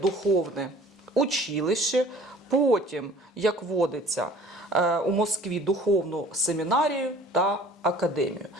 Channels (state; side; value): normal; both; correlation 0.49